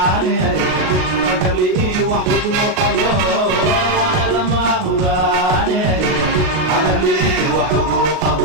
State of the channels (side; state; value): left; late; 38 ms